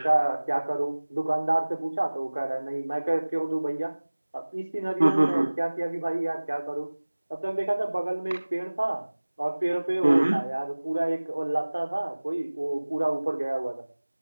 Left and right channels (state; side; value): inverted; both; correlation -1.00